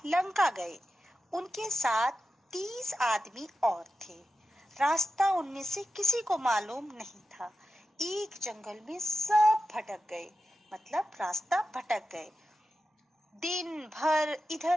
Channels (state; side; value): normal; both; correlation 0.91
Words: لنکا گئے. ان کے ساتھ 30 آدمی اور تھے. راستہ ان میں سے کسی کو معلوم نہیں تھا. ایک جنگل میں سب بھٹک گئے، مطلب راستہ بھٹک گئے. دن بھر